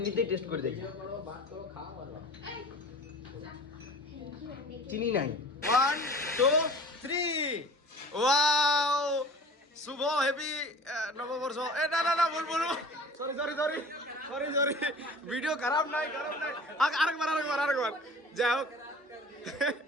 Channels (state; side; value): normal; both; correlation 0.43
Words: টেস্ট করে দেখি, চিনি নাই। 1 2 3, ওয়াও, শুভ হ্যাপি নববর্ষ। এ না না না, বলবো sorry sorry sorry sorry sorry, video খারাপ নাই খারাপ নাই। আরেকবার যাই হোক।